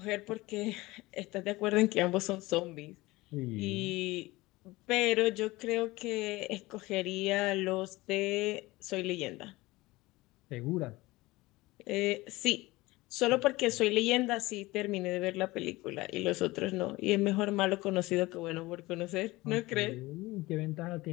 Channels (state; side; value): quieter; right; 20.4 dB